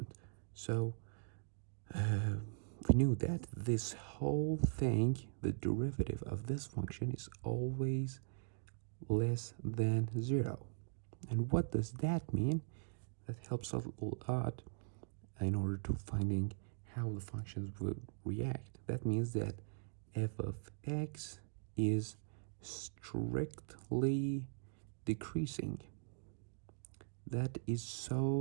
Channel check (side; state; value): left; silent; digital silence